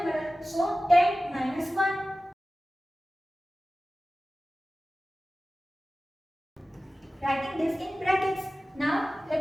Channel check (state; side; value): normal; both; correlation 0.96